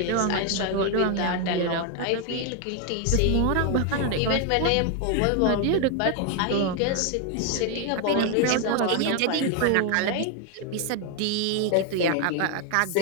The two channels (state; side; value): different; both; correlation 0.01